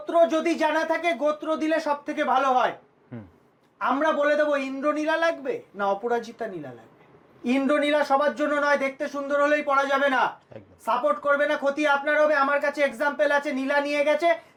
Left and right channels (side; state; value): both; identical; correlation 1.00